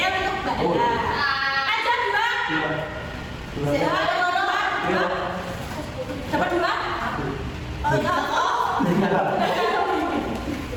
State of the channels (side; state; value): both; identical; correlation 1.00